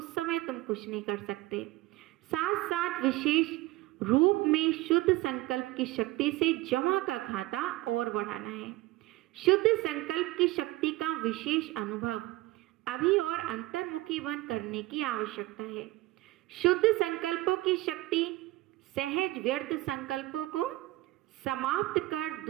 समय तुम कुछ नहीं कर सकते। साथ साथ विशेष रूप में शुद्ध संकल्प की शक्ति से जमा का खाता और बढ़ाना है। शुद्ध संकल्प की शक्ति का विशेष अनुभव अभी और अंतर्मुखी बन करने की आवश्यकता है। शुद्ध संकल्पों की शक्ति सहज व्यर्थ संकल्पों को समाप्त कर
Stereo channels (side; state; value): left; quieter; 18.7 dB